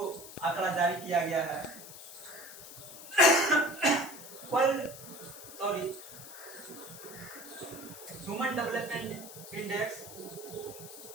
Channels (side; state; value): left; noise; hiss, 14 dB below the sound